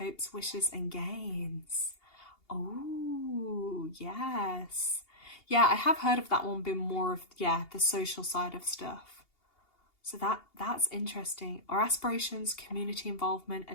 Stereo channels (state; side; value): late; right; 2.8 ms